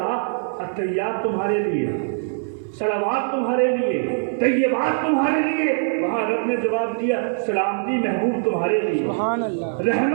التحیات تمہارے لیے، صلوات تمہارے لیے، طیبات تمہارے لیے. وہاں رب نے جواب دیا سلامتی محبوب تمہارے لیے، سبحان اللہ.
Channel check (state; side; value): silent; left; digital silence